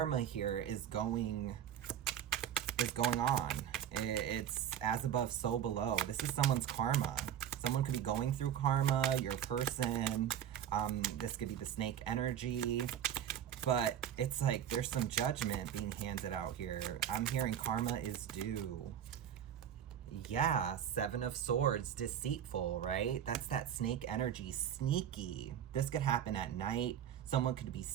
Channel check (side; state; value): left; quieter; 9.9 dB